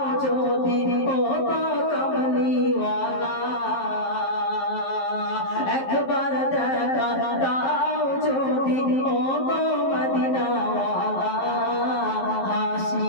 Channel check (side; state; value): right; late; 11 ms